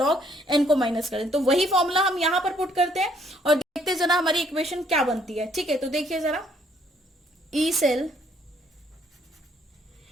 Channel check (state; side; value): normal; both; correlation 0.66